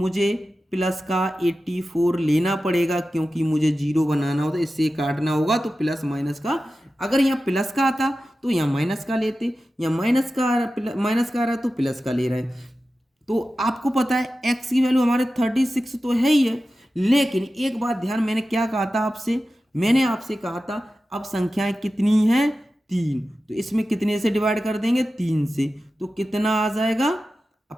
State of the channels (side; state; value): both; normal; correlation 0.94